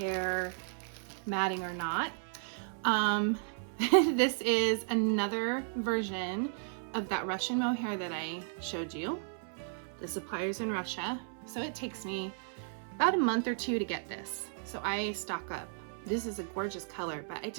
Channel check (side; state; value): left; silent; 55 dB below the other